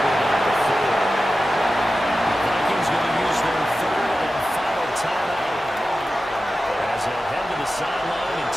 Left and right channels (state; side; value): normal; both; correlation 0.93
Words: knock the 4. The Vikings going to use their 3rd and final timeout as they'll head to the sideline and